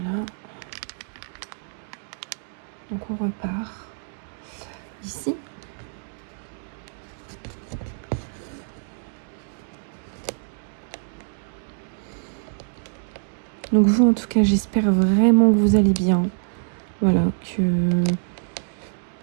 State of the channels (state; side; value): silent; left; digital silence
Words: Donc on repart ici. Donc vous, en tout cas, j'espère vraiment que vous allez bien. Voilà, que